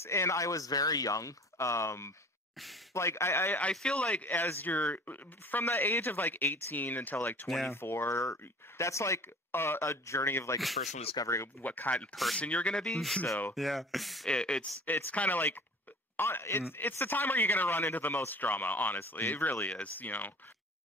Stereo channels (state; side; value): normal; both; correlation 0.45